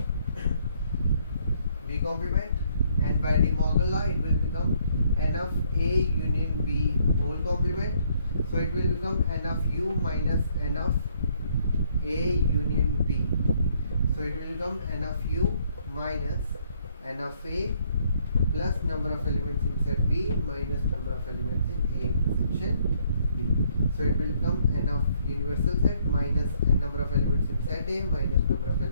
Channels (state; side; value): inverted; both; correlation -0.67